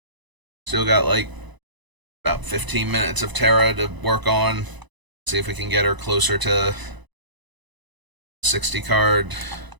Still got like about 15 minutes of Terra to work on. See if we can get her closer to 60 card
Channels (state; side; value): late; left; 1.0 ms